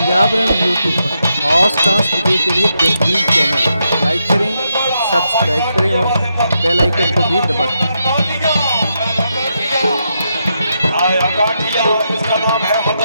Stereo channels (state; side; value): inverted; both; correlation -0.82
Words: पंजाब रन यूट्यूब पर हॉट डांस वीडियो के लिए बेहतरीन चैनल। लाइक करें, सब्सक्राइब करें और बेल आइकन को भी दबाएं। आया गाठिया, इसका नाम है